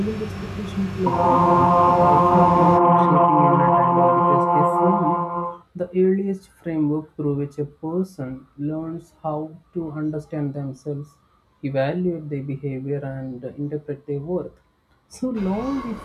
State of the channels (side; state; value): both; identical; correlation 1.00